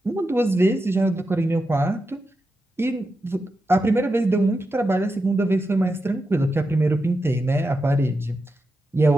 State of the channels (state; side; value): normal; both; correlation 0.88